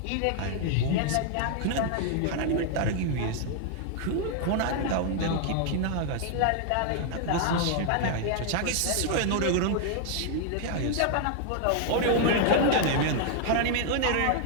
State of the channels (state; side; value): different; both; correlation 0.00